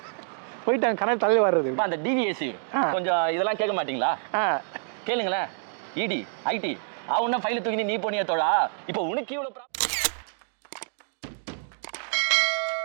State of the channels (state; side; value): silent; left; digital silence